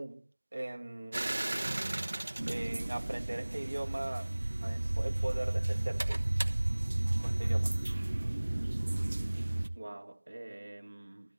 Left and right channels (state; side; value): inverted; both; correlation -1.00